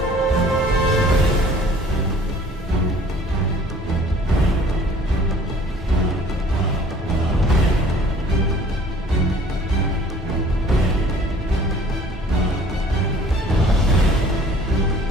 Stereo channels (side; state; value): both; normal; correlation 0.52